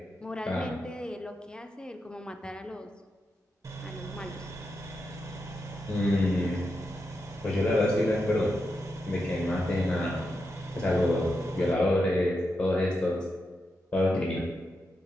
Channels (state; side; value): normal; both; correlation 0.86